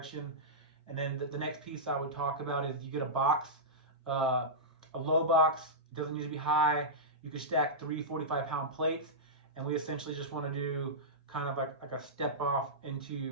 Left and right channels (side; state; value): both; normal; correlation -0.13